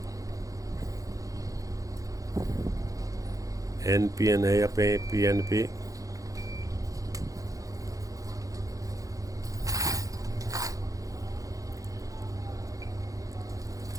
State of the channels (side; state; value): left; late; 0.17 ms